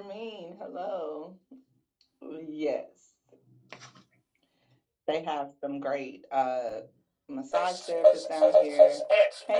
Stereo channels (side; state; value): both; identical; correlation 1.00